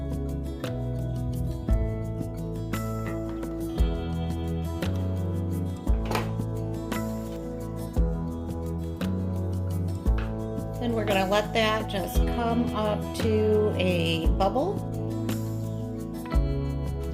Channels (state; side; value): identical; both; correlation 1.00